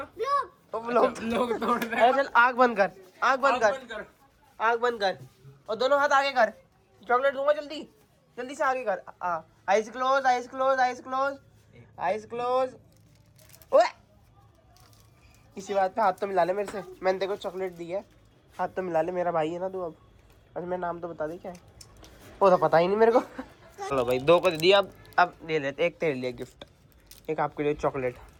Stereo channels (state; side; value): identical; both; correlation 1.00